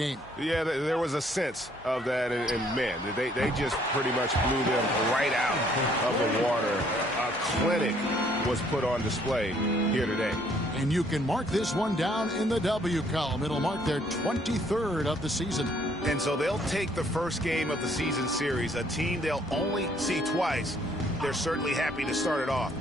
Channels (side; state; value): both; normal; correlation 0.64